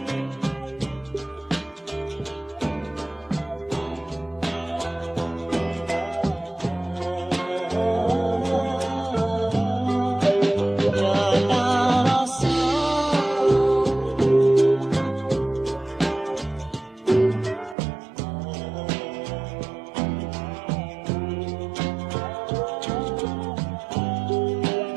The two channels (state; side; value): drops out; left; at 17.8 s